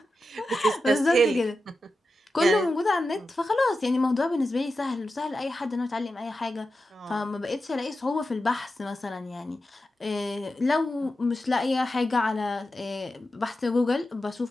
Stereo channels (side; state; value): both; normal; correlation 0.91